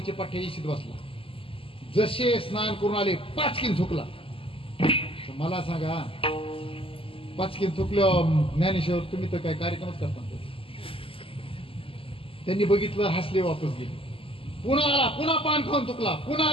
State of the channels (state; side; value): late; right; 0.26 ms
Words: पाठ्याशीत बसला. जसे स्नान करून आले पाचकीन थुकला. मला सांगा, पाचकीन थुकलं ज्ञानेश्वर तुम्ही तर काय कार्यक्रमच करता. त्यांनी बघितलं, हसले, वापस गेले. पुन्हा आला, पुन्हा पान खाऊन थुकला, पुन्हा